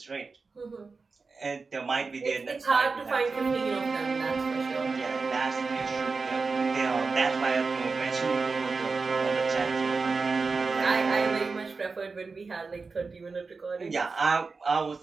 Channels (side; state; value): left; quieter; 4.3 dB